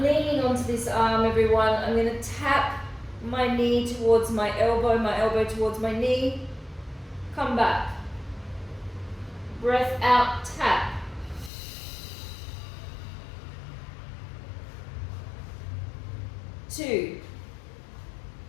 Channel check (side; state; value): right; drops out; at 11.5 s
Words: leaning onto this arm, everyone. I'm going to tap my knee towards my elbow towards my knee. Come back. Breath out, tap. Two,